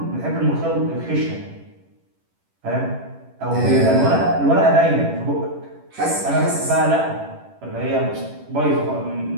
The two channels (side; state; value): left; late; 11 ms